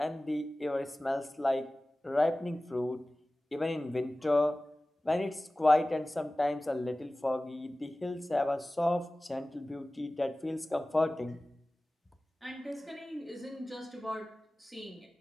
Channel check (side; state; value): both; normal; correlation 0.97